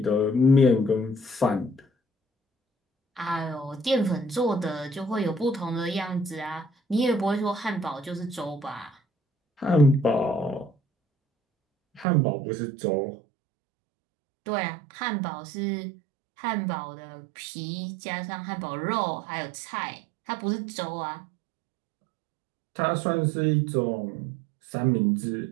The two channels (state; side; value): drops out; left; at 12.1 s